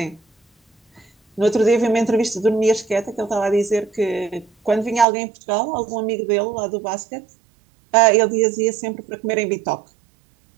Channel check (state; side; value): drops out; left; at 5.1 s